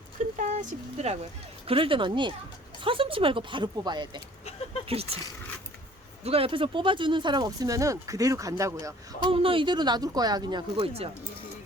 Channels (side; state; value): both; normal; correlation 0.53